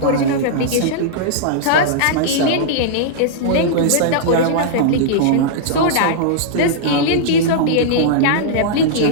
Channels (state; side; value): different; both; correlation -0.02